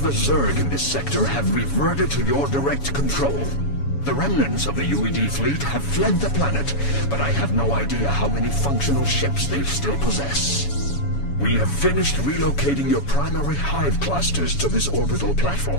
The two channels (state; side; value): late; right; 7.1 ms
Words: the Zerg in this sector have reverted to your direct control. The remnants of the UED fleet have fled the planet, but I have no idea how many functional ships they still possess. We have finished relocating your primary hive clusters to this orbital